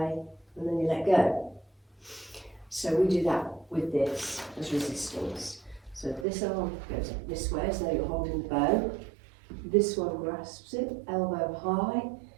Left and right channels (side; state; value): left; drops out; at 6.2 s